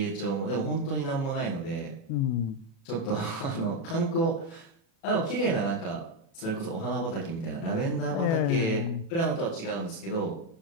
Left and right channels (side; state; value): right; late; 36 ms